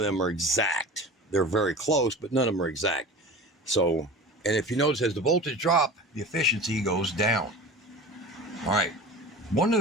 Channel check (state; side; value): normal; both; correlation 0.35